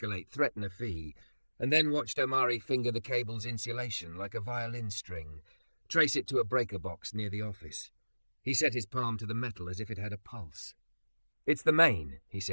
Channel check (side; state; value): both; inverted; correlation -1.00